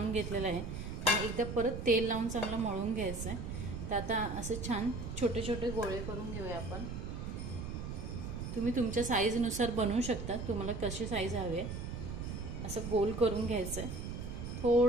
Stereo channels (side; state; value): right; noise; rumble, 6 dB below the sound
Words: घेतलेलं आहे आणि एकदा परत तेल लावून चांगलं मळून घ्यायचं आहे। तर आता असं छान छोटे छोटे गोळे करून घेऊया आपण। तुम्ही तुमच्या साईजनुसार बनवू शकता, तुम्हाला कशी साईज हवी आहे असं गोल करून घ्यायचं आहे।